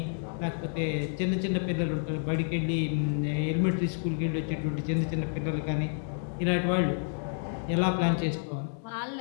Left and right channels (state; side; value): silent; right; 58 dB below the other